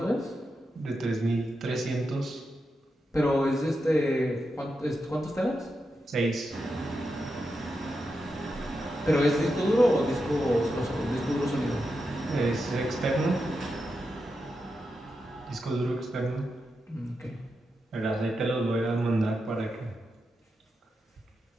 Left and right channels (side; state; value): both; normal; correlation 0.87